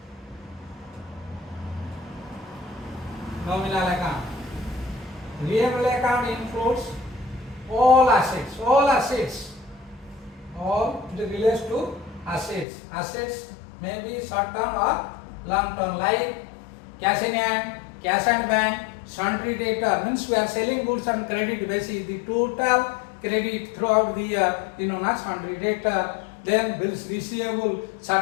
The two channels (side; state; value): right; drops out; at 12.7 s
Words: nominal account. Real account includes all assets, all it relates to assets. Assets may be short term or long term, like cash in hand, cash and bank, sundry debtor means we are selling goods on credit basis. The total credit throughout the year is known as sundry debtor. Then bills receivable,